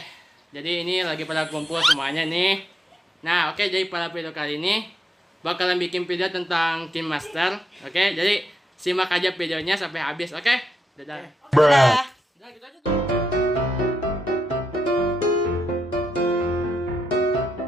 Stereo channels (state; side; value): normal; both; correlation 0.82